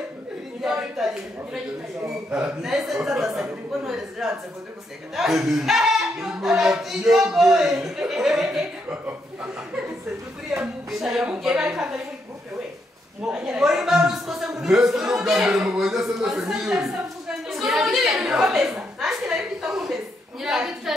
Nese tadasa kuko none ziranze ko guseka. Sekuri ya mugera Ya mugera kandi ari muri groupe we. Muri maso kose muri. Nese no gambere mu bwenge se nese ngiyo. Nanjye nari kwita nkumeze.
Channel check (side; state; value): both; normal; correlation 0.78